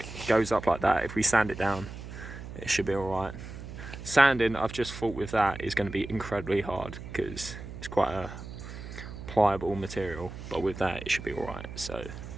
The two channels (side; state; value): right; noise; hum, 11 dB below the sound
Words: goes up like that, if we sand it down, it should be alright. Sanding, I've just thought with that, is going to be incredibly hard because it's quite a pliable material, but with that it should be alright. So